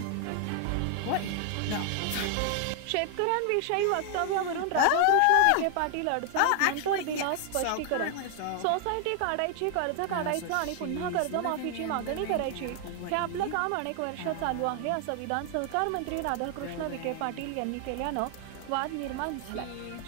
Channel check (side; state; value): both; different; correlation 0.00